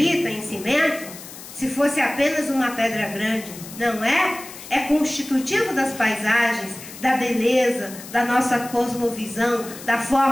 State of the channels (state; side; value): noise; left; hiss, 15 dB below the sound